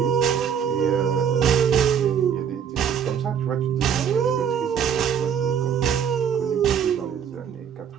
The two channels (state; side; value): quieter; left; 7.9 dB